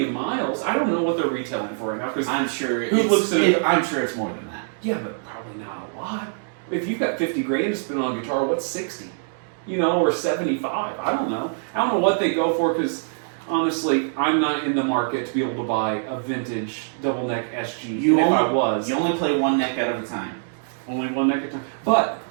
miles. I don't know what they're retailing for right now because I'm sure. I'm sure it's more than that. yeah, but probably not a lot. If you've got 50 grand to spend on a guitar, what's 60? Or 75. I don't know. I don't know what they go for because honestly, I'm not in the market to be able to buy a vintage double neck SG. You only play one neck at a time. only one neck at a time. But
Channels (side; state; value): left; silent; digital silence